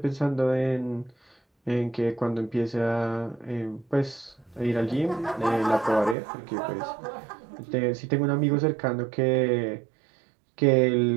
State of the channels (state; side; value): drops out; left; at 6.2 s